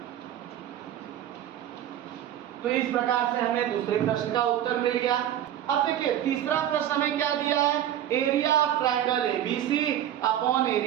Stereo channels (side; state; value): left; quieter; 11.3 dB